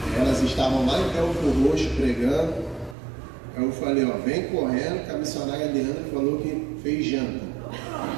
Elas estavam lá em Belfor Roxo pregando. Eu falei, ó, vem correndo, que a missionária Leandra falou que fez janta.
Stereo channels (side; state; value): left; drops out; at 3.0 s